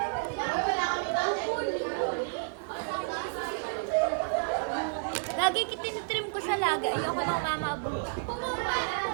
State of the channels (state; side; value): silent; left; digital silence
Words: Lagi kitinitrim ko sa laga. Ayoko nang mamaabot.